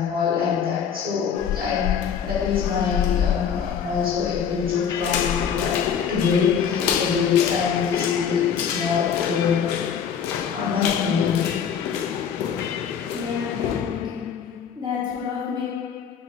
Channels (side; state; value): right; quieter; 7.5 dB